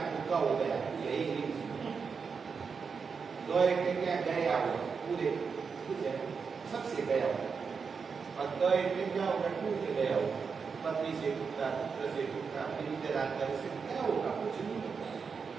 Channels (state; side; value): quieter; left; 5.6 dB